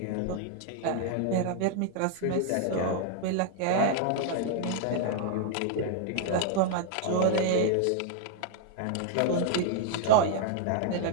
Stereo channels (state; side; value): different; both; correlation 0.00